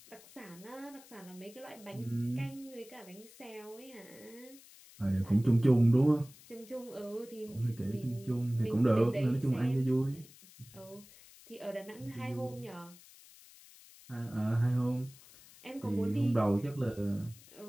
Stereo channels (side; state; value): left; noise; hiss, 22 dB below the sound